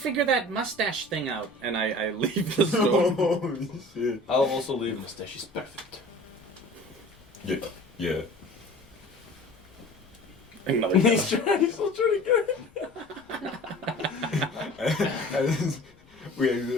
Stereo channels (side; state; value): left; noise; rumble, 27 dB below the sound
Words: that mustache thing out," and I leave the store. Holy shit. I'll also leave. Your mustache is perfect. Yeah. Yeah. Another He's still trying to get We